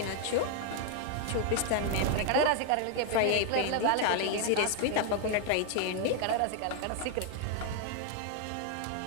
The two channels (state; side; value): different; both; correlation 0.00